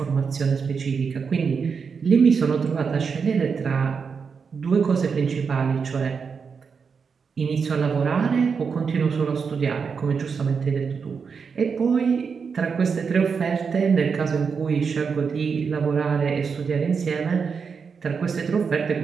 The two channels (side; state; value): left; quieter; 5.8 dB